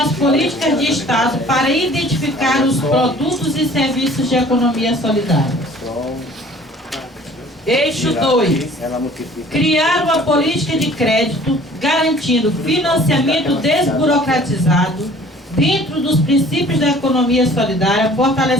políticas de Estado para identificar os produtos e serviços de economia solidária. Eixo 2. Criar uma política de crédito garantindo financiamento desburocratizado dentro dos princípios da economia solidária,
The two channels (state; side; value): normal; both; correlation 0.51